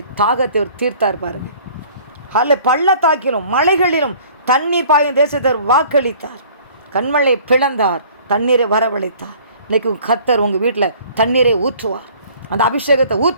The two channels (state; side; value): inverted; both; correlation -0.52